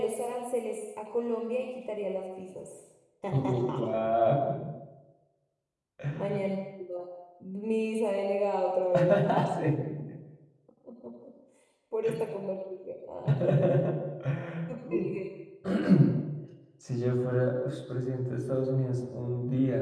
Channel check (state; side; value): identical; both; correlation 1.00